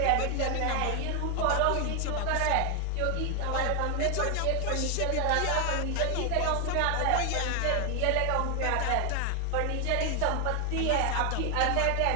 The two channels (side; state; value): both; different; correlation 0.00